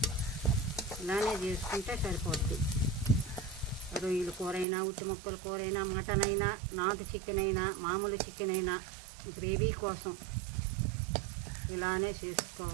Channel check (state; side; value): drops out; left; at 4.7 s